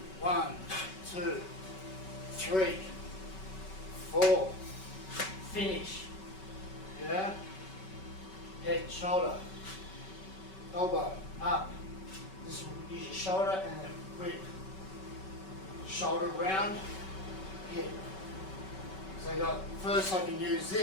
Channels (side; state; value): right; late; 5.3 ms